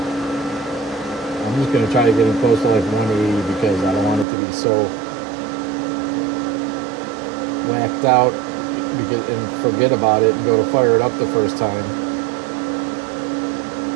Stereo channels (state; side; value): drops out; left; at 4.2 s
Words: I'm just going to try to get it close to like 180 because I don't want it to be so whacked out and forget about it and go to fire it up the first time.